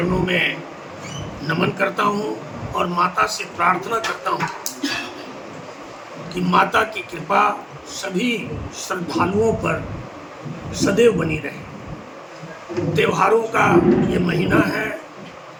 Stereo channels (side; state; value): both; identical; correlation 1.00